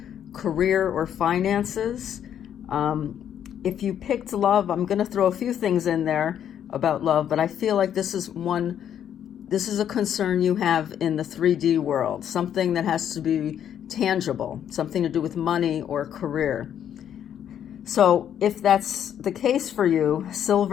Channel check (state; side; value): quieter; right; 9.6 dB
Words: career or finances. If you picked love, I'm going to throw a few things in there about love, but I feel like this is a concern you have in the 3D world, something that has to be tangible, something to do with money or career. So if that's the case for you,